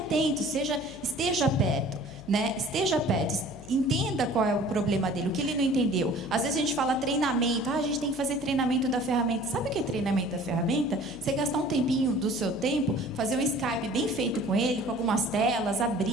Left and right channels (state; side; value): noise; left; hum, 20 dB below the sound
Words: esteja perto, né? Esteja perto. Entenda qual é o problema dele, o que ele não entendeu. Às vezes a gente fala treinamento, a gente tem que fazer treinamento da ferramenta. Sabe o que é treinamento da ferramenta? Você gastar um tempinho do seu tempo, fazer um Skype bem feito com ele, com algumas telas,